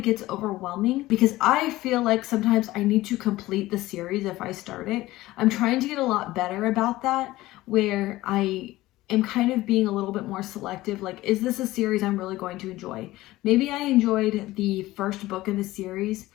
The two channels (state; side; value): quieter; right; 17.4 dB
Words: gets overwhelming because I feel like sometimes I need to complete the series if I start it. I'm trying to get a lot better about that, where I am kind of being a little bit more selective. Like, is this a series I'm really going to enjoy? Maybe I enjoyed the first book in the series,